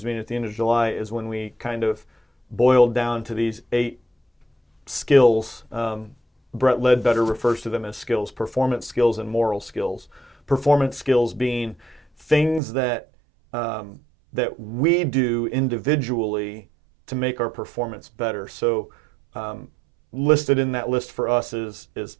meeting at the end of July is when we kind of boiled down to these 8 skills. Brett Ledbetter refers to them as skills: performance skills and moral skills. Performance skills being things that we do individually to make our performance better. So listed in that list for us is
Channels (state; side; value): drops out; left; at 12.6 s